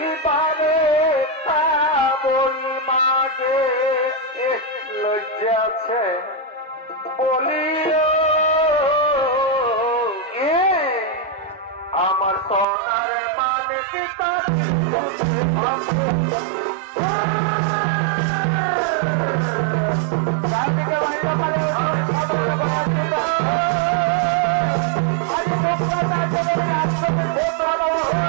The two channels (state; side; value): drops out; left; at 12.7 s